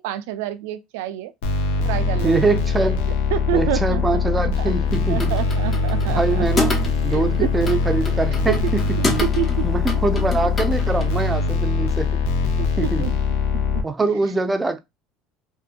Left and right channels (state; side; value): normal; both; correlation 0.53